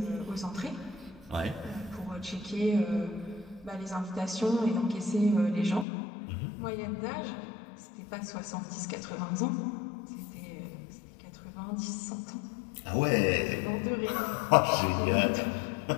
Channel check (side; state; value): right; drops out; at 5.9 s